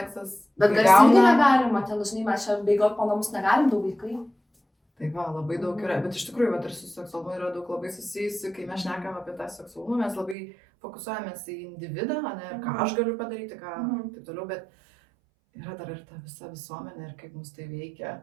Bet garsiai irgi negalima, ten dažnai mes čia bėgiot po namus negalim, 2 vaikai. Tai va, labai daug yra, bet iš tikrųjų, ir su seksualumu yra daug labai susijusi, kai mes šnekam apie tą seksualumą, mes labai fokusuojamės į individą, ir ką aš galiu padaryti, ką taip toliau, bet yra dar ir ta visa visuomenė ir kaip mus tai veikia,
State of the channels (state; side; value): drops out; left; at 10.4 s